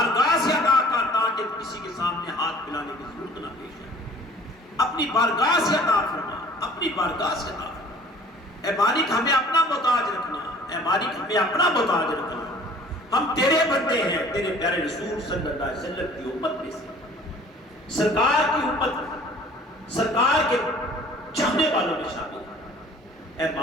سے عطا کر تاکہ کسی کے سامنے ہاتھ پھیلانے کی ضرورت نہ پیش آئے، اپنی بارگاہ سے عطا فرما، اپنی بارگاہ سے عطا فرما۔ اے مالک ہمیں اپنا محتاج رکھنا، اے مالک ہمیں اپنا محتاج رکھنا، ہم تیرے بندے ہیں، تیرے پیارے رسول صلی اللہ علیہ وسلم کی امت میں سے، سرکار کی امت، سرکار کے چاہنے والوں میں شامل ہیں۔ اے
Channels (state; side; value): normal; both; correlation 0.51